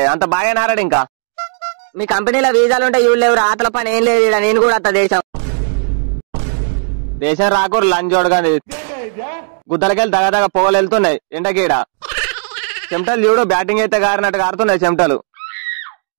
అంత బాగా నారాడు. ఇంకా మీ కంపెనీలో వీసాలు ఉంటే ఇవి లేవు. ఆతల పని ఏం లేదు. నేను కూడా అత్త దేశం రాకూరు లంచోడు కానీ గుద్దలకెళ్ళి దగదగ పొగలు వెళ్తున్నాయి ఎండకీడ. చెమటలు చూడు బ్యాటింగ్ అయితే గారినట్టు గారుతున్నాయి చెమటలు.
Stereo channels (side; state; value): left; silent; digital silence